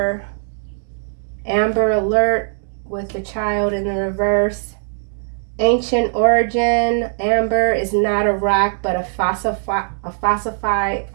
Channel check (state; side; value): silent; left; digital silence